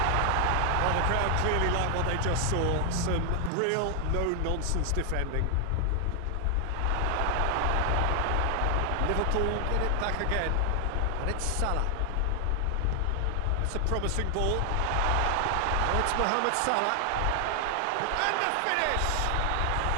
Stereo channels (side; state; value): both; different; correlation 0.00